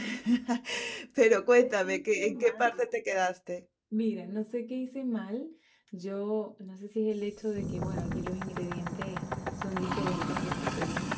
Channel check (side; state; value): both; identical; correlation 1.00